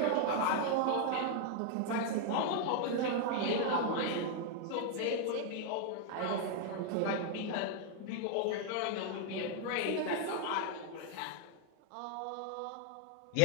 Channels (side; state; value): both; different; correlation 0.00